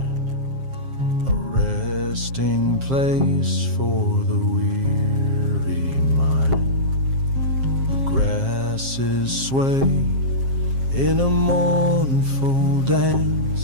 a resting place for the weary mind. The grasses sway in a mournful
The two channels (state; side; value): late; left; 7.5 ms